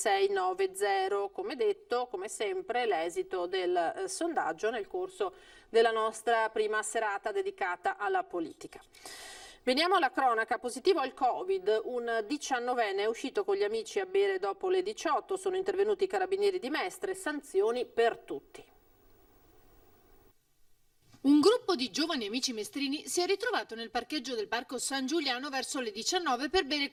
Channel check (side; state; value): both; identical; correlation 1.00